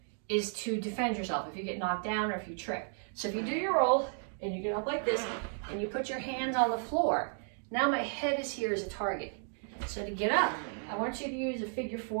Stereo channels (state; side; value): silent; left; 55 dB below the other